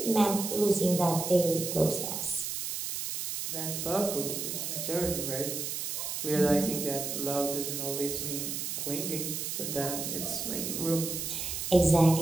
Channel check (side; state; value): right; noise; hiss, 4 dB below the sound